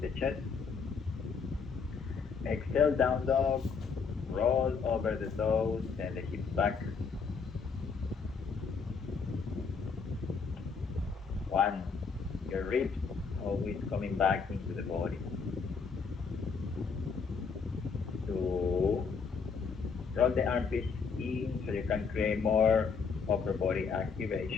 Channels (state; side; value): quieter; right; 5.4 dB